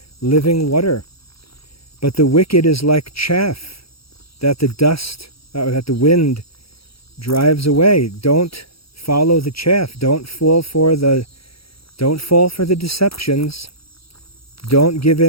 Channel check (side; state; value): right; late; 0.76 ms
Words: living water. But the wicked is like chaff that the wind drives away. Don't follow the chaff. Don't fall for the deceptions. Don't give